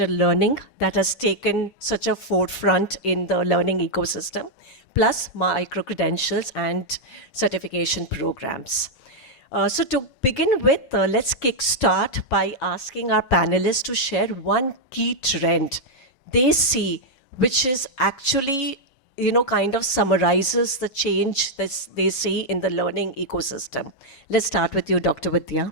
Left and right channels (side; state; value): right; late; 7.1 ms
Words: learning that has taken such a forefront in the learning ecosystem, plus micro-credentials and certification programs. So to begin with, let's kickstart by asking our panelists to share one key trend they see, which is actually, kind of summarizes the change that they see in the learning ecosystem. Let's start with you, Dr.